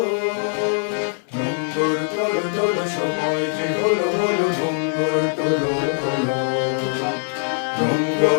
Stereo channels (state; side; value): silent; right; 64 dB below the other